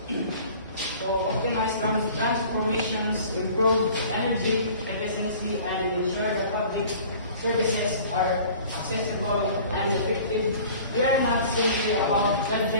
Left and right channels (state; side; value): inverted; both; correlation -0.46